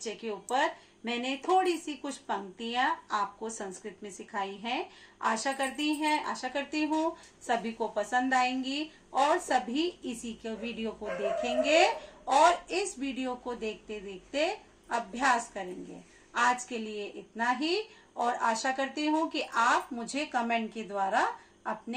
के ऊपर मैंने थोड़ी सी कुछ पंक्तियां आपको संस्कृत में सिखाई हैं। आशा करती हूँ सभी को पसंद आएंगी और सभी इसी के वीडियो को देखेंगे और इस वीडियो को देखते देखते अभ्यास करेंगे। आज के लिए इतना ही और आशा करती हूँ कि आप मुझे कमेंट के द्वारा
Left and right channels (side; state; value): both; identical; correlation 1.00